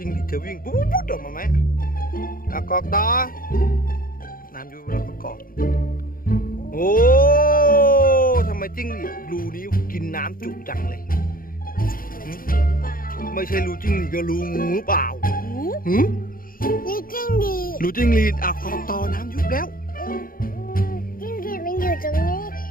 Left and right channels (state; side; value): late; right; 0.41 ms